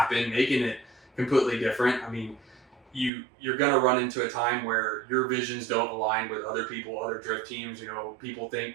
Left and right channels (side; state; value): left; drops out; at 3.1 s